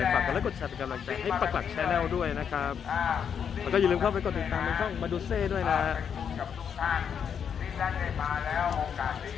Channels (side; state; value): right; quieter; 7.6 dB